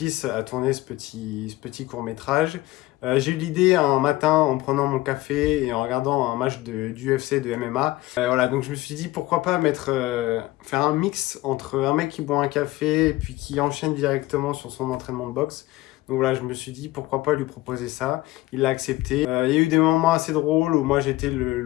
à tourner ce petit court-métrage. J'ai eu l'idée un matin en prenant mon café et en regardant un match d'UFC, de MMA. Voilà, donc je me suis dit pourquoi pas faire un mix entre un mec qui boit un café et puis qui enchaîne directement sur son entraînement de boxe. Donc voilà, je me suis dit pourquoi pas lui proposer ça. Il l'a accepté. Il y a eu des moments assez drôles où moi j'étais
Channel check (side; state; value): right; quieter; 18.3 dB